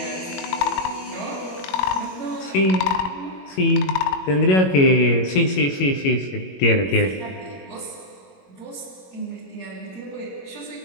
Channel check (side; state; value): right; late; 21 ms